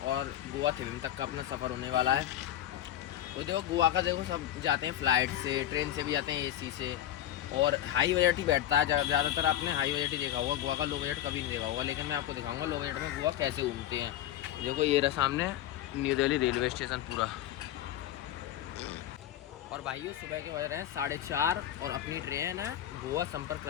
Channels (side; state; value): right; quieter; 12.0 dB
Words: और गोवा थिविम तक का अपना सफ़र होने वाला है। वो देखो गोवा का, देखो सब जाते हैं फ़्लाइट से, ट्रेन से भी जाते हैं, एसी से, और हाई बजट ही बैठता है ज़्यादातर। आपने हाई बजट ही देखा होगा, गोवा का लो बजट कभी नहीं देखा होगा। लेकिन मैं आपको दिखाऊंगा लो बजट में गोवा कैसे घूमते हैं। देखो ये रहा सामने न्यू दिल्ली रेलवे स्टेशन पूरा। और भाइयों सुबह के बज रहे हैं 4:30, और अपनी ट्रेन है गोवा संपर्क